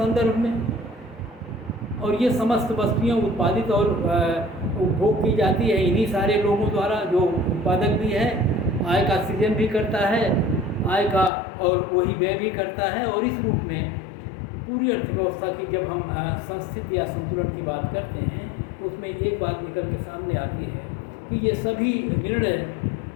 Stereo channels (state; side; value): drops out; right; at 11.3 s